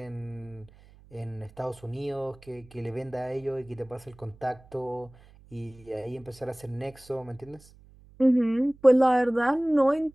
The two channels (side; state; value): right; noise; hum, 25 dB below the sound